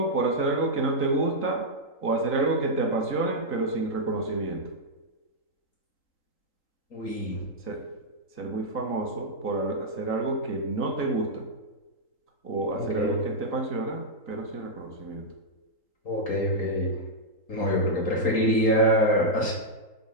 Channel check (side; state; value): right; late; 3.8 ms